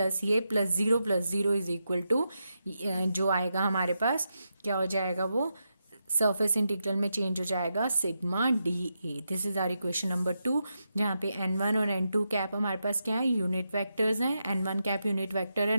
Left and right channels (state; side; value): inverted; both; correlation -0.86